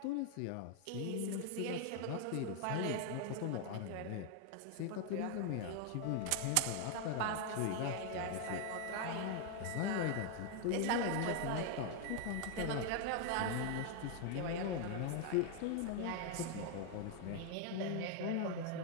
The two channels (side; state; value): both; different; correlation 0.00